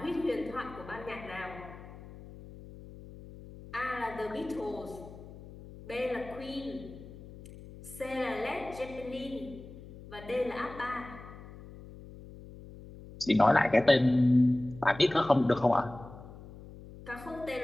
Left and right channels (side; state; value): left; noise; hum, 16 dB below the sound